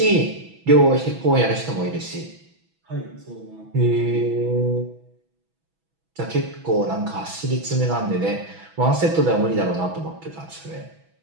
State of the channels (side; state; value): left; late; 6.1 ms